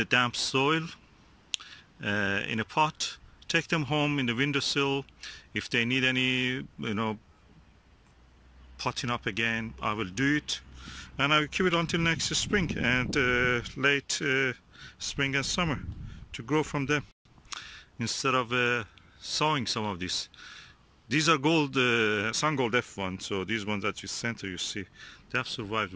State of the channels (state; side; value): identical; both; correlation 1.00